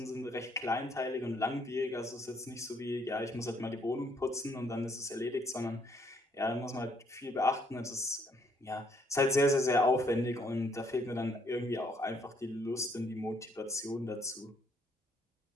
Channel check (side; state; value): both; normal; correlation 0.68